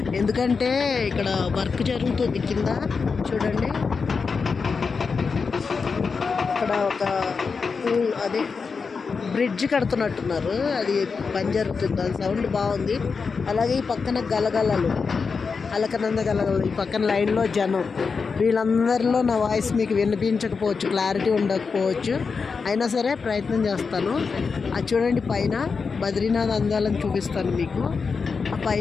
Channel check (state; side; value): quieter; right; 5.1 dB